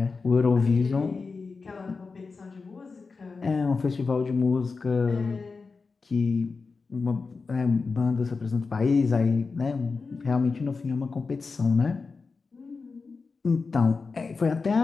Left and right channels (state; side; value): quieter; right; 4.5 dB